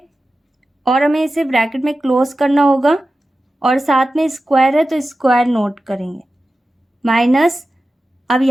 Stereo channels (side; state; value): both; normal; correlation 0.94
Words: और हमें इसे ब्रैकेट में क्लोज करना होगा और साथ में स्क्वायर है तो स्क्वायर नोट करेंगे माइनस। अब